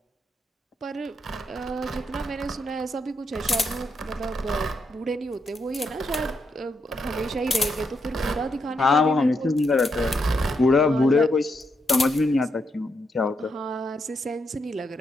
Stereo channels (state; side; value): normal; both; correlation 0.80